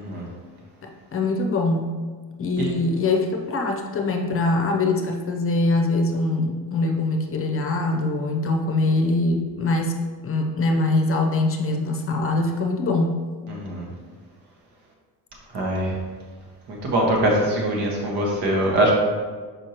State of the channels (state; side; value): normal; both; correlation 0.40